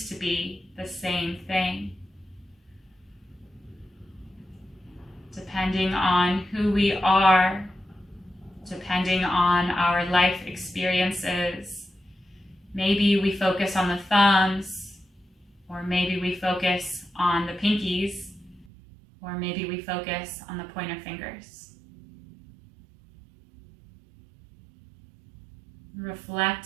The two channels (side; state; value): left; drops out; at 18.7 s